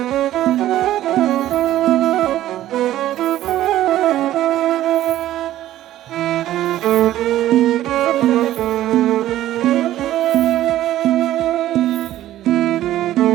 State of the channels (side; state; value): left; quieter; 13.6 dB